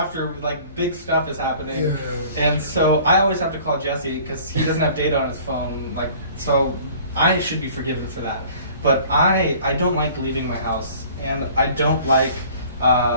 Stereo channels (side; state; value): both; inverted; correlation -0.50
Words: like, big stuff is happening. Yeah. And so I always have to call Jesse because he doesn't have data on his phone. Like, so I should be forgiven for that. But I don't like leaving my house, and I don't like